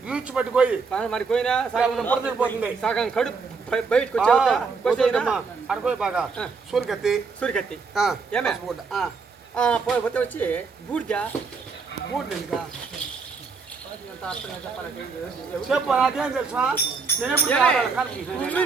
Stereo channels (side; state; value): left; quieter; 4.9 dB